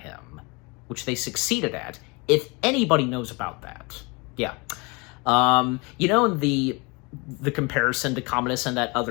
which they succeeded at, if anybody knows about that. Yeah. In the comparison to Commodus and that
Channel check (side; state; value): right; quieter; 28.2 dB